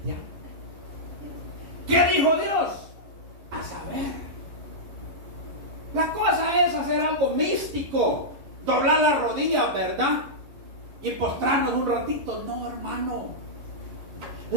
¿Qué dijo Dios? A saber. La cosa es hacer algo místico, doblar las rodillas, ¿verdad? Y postrarnos un ratito. No, hermano.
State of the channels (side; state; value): left; late; 11 ms